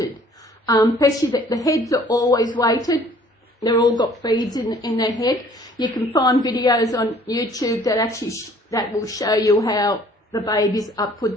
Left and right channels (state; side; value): normal; both; correlation 0.56